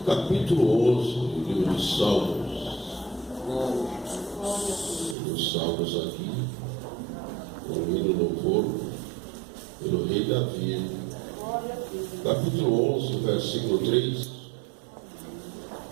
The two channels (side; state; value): left; drops out; at 5.2 s